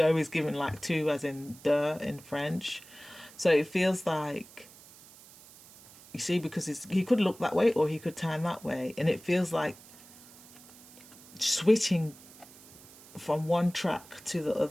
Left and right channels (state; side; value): noise; right; hiss, 21 dB below the sound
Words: is given like two, as in de in French. So it feels like, you see, because he could look that way or he could turn that way, and it feels like switching from one track to the